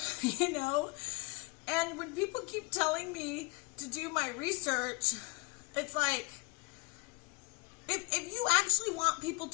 you know? And when people keep telling me to do my research, it's like, if you actually want people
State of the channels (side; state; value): right; quieter; 28.5 dB